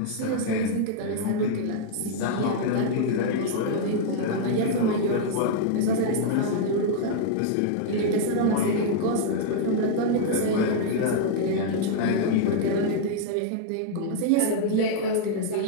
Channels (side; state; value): both; different; correlation -0.01